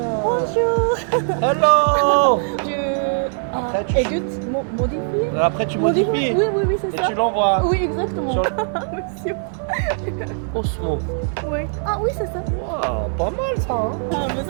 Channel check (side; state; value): left; silent; 61 dB below the other